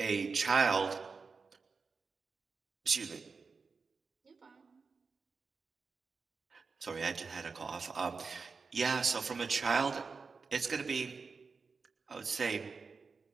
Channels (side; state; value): left; quieter; 4.8 dB